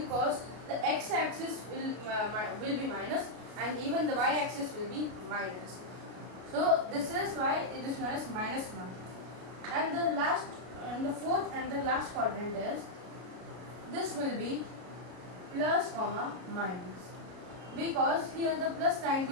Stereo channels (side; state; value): left; late; 33 ms